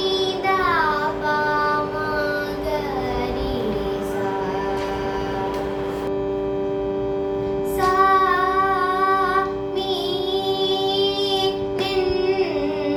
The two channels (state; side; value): identical; both; correlation 1.00